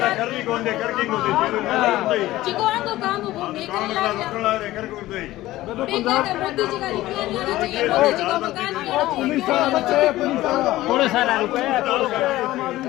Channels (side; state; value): right; quieter; 16.4 dB